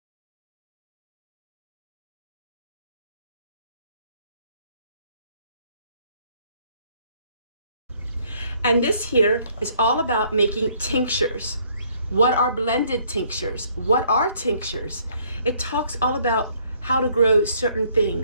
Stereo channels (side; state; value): both; inverted; correlation -0.64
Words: And this here is all about making tinctures. What are blended tinctures? What are tinctures? It talks all about how to grow certain